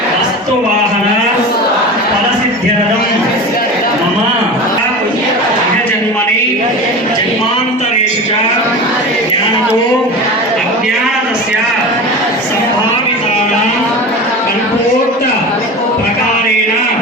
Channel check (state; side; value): normal; both; correlation 0.30